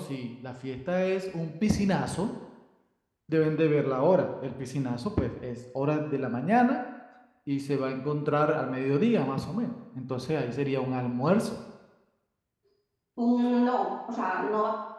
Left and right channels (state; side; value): identical; both; correlation 1.00